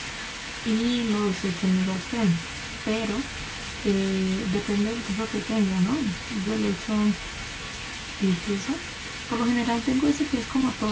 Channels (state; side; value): identical; both; correlation 1.00